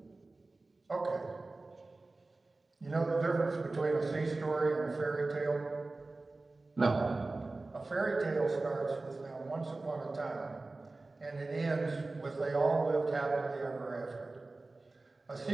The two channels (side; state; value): left; quieter; 3.3 dB